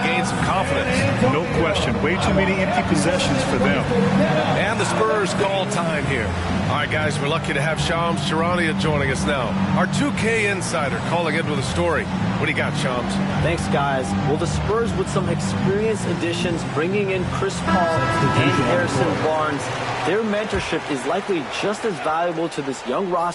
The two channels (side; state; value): both; identical; correlation 1.00